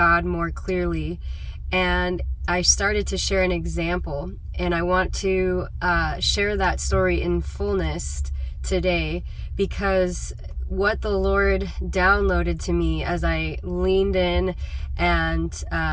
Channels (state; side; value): identical; both; correlation 1.00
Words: more clearly. And I started to share an example, and I want to share that story in fullness today, because what the Lord downloaded to me as I leaned in and